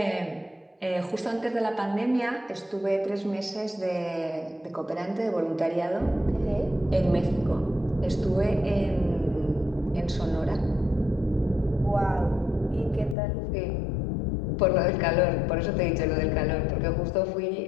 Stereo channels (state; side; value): drops out; right; at 13.2 s